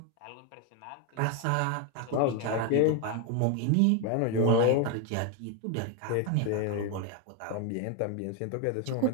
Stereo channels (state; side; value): different; both; correlation 0.01